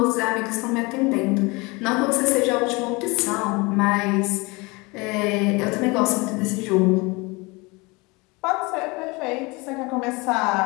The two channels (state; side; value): quieter; right; 25.8 dB